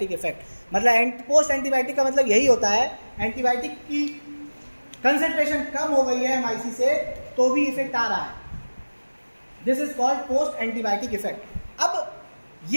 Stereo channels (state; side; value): inverted; both; correlation -1.00